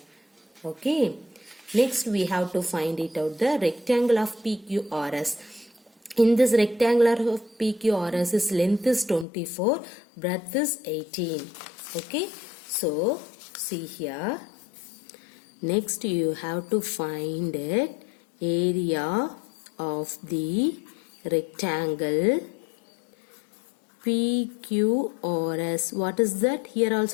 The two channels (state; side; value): drops out; right; at 9.2 s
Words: Okay. Next we have to find it out, the rectangle of PQRS. In this rectangular of PQRS, its length is 24, breadth is 18. Okay. So, see here. Next you have to find it, area of the rectangle PQRS. What is that? Here